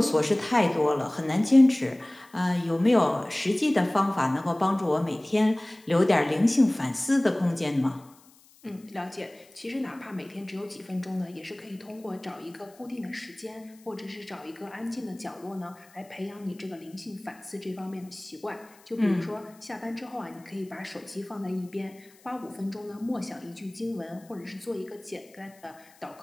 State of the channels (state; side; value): noise; left; hiss, 27 dB below the sound